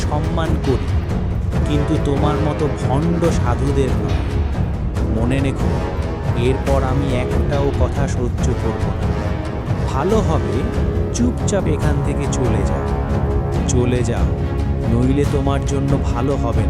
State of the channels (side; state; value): both; identical; correlation 1.00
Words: সম্মান করি, কিন্তু তোমার মতো ভণ্ড সাধুদের নয়। মনে রেখো, এরপর আমি একটাও কথা সহ্য করব না। ভালো হবে চুপচাপ এখান থেকে চলে যাও। চলে যাও, নইলে তোমার জন্য ভালো হবে